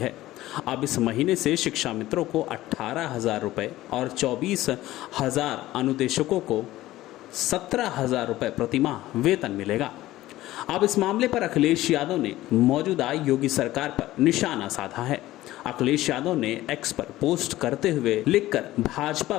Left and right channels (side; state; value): right; quieter; 16.0 dB